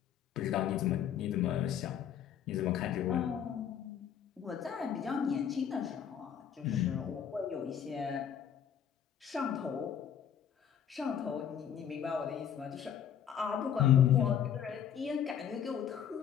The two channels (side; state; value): right; quieter; 8.9 dB